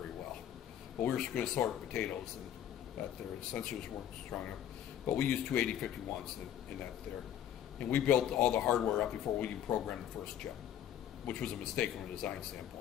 well. But we were going to sort potatoes, and that there, the sensors weren't strong enough. But we used 28051s in that there. And we built all the hardware up before we even programmed the first chip, which was a mistake from a design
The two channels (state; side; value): quieter; right; 10.5 dB